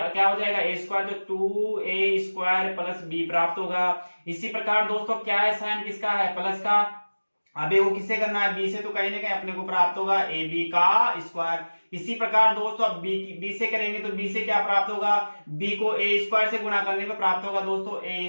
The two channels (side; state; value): both; inverted; correlation -1.00